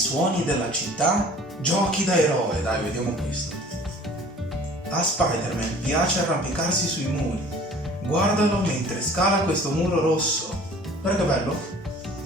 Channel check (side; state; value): both; normal; correlation 0.48